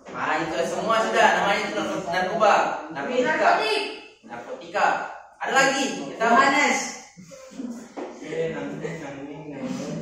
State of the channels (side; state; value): both; identical; correlation 1.00